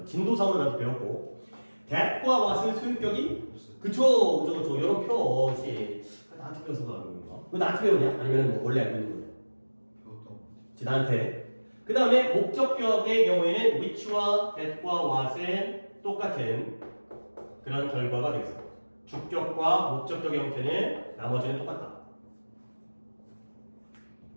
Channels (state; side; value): inverted; both; correlation -1.00